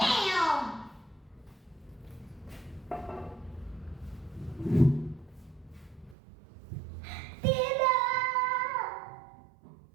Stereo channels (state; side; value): drops out; left; at 6.2 s